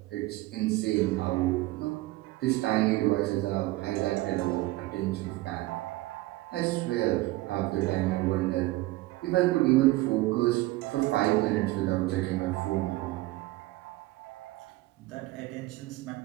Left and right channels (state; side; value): quieter; left; 18.8 dB